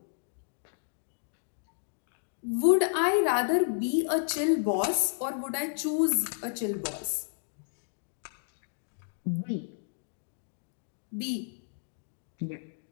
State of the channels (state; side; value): silent; right; digital silence